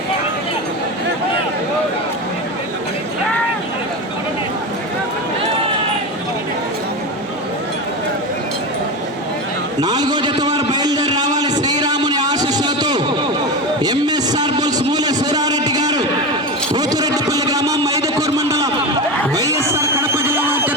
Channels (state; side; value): normal; both; correlation 0.22